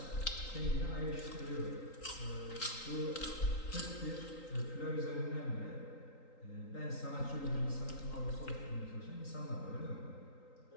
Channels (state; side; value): late; right; 3.8 ms